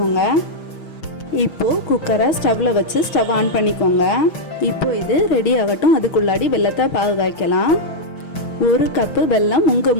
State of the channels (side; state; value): right; late; 6.2 ms